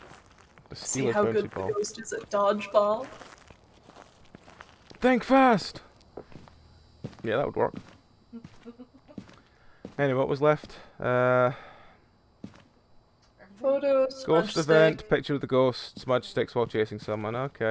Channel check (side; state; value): both; identical; correlation 1.00